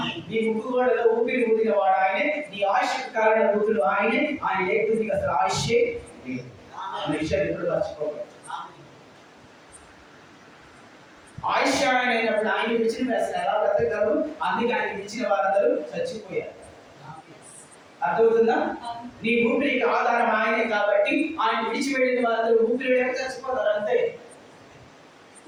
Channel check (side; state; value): both; identical; correlation 1.00